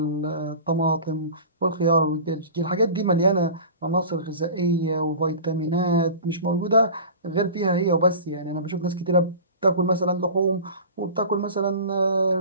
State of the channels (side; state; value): both; inverted; correlation -0.36